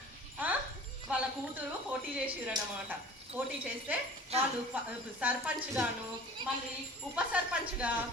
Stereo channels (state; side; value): normal; both; correlation 0.43